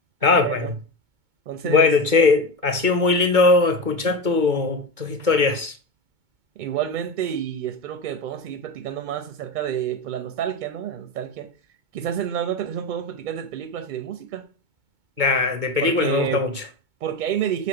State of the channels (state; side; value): late; left; 2.2 ms